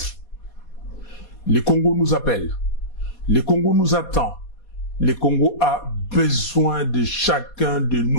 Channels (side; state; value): right; late; 4.2 ms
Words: Le Congo nous appelle. Le Congo nous attend. Le Congo a besoin de chacun de